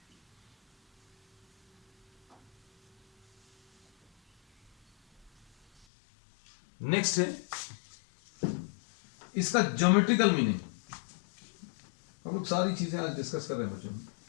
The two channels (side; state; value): right; drops out; at 5.9 s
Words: नेक्स्ट है इसका ज्योमेट्रिकल मीनिंग। हम लोग सारी चीजें आज डिस्कस कर रहे हैं बच्चों।